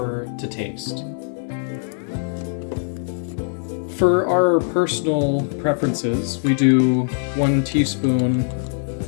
to taste. For our personal preferences, we do 1 teaspoon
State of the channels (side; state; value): right; silent; digital silence